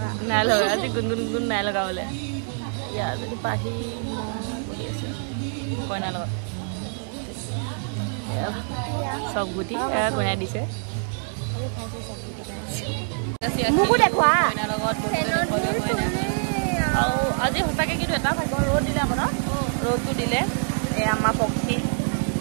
লগা আজি গুনগুন নাই লগা বলে ইয়া যদি পাহি বহি আছে কইনা লগত সব গুটি কইনা দিছে মুকু দেখুৱা কইনা লগত আৰু আজি হতাকে কিন্তু এটা ভাগ্য ৰ'দ দিলে আপোনাৰ ৰ'দটো দিলে এই আমাৰ পক্ষী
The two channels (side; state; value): left; silent; 62 dB below the other